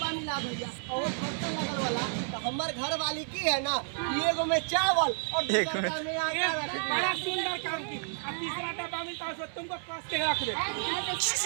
मिला भैया और वो खर्चा लगल वाला, तो हमार घर वाली की है ना, एगो में चावल और दूसरा में आटा रख बड़ा दिया। सुंदर काम की, अब तीसरा डब्बा मिलता है उसमें तुमको कस के रख दे।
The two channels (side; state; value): left; silent; 57 dB below the other